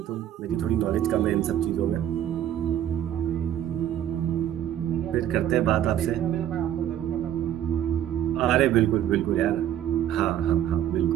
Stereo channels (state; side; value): quieter; left; 11.0 dB